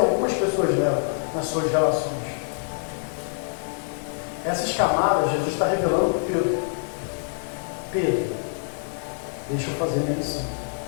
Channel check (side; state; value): right; silent; digital silence